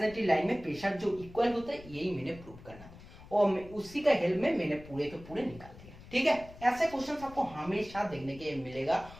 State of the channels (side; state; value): left; noise; rumble, 18 dB below the sound